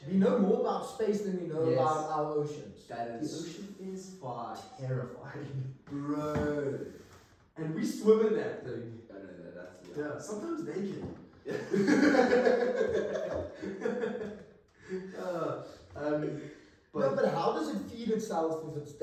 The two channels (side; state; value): both; identical; correlation 1.00